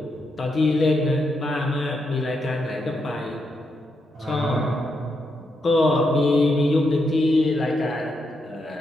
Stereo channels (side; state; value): both; normal; correlation 0.82